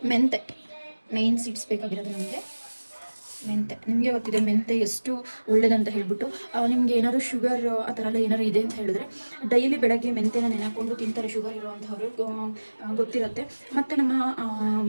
ಮೆಂತೆ, ಮೇನ್ ಸೀಡ್ಸ್ ಬೇಕಾಗಿರೋದು ನಮಗೆ ಮೆಂತೆ. ನಿಮಗೆ ಗೊತ್ತಿದೆ ಮೆಂತೆ ಎಷ್ಟು ಒಳ್ಳೇದಂತ ಹೇಳ್ಬಿಟ್ಟು. ನಿಮಗೆ ಏನಾದ್ರು ಶುಗರ್ ಆ ಥರ ಎಲ್ಲ ಏನಾದ್ರು ಇದೆ ಅಂತ ಹೇಳಿದ್ರೆ ಡೈಲಿ ಬೆಳಗ್ಗೆ ಮೆಂತೆನ ನೆನೆಕೊಂಡು ತಿಂತಾರೆ ಶುಗರ್ ಇರೋವಂಥವ್ರು, ಗೊತ್ತಿರುತ್ತೆ. ಮತ್ತು ನಮ್ಮ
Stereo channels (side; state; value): both; inverted; correlation -1.00